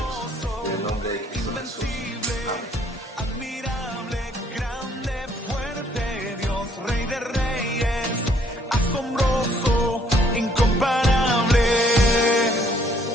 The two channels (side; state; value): both; normal; correlation 0.65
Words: En el nombre de Cristo Jesús. Amén. Admirable, grande, fuerte, Dios, Rey de Reyes, asombroso, incomparable.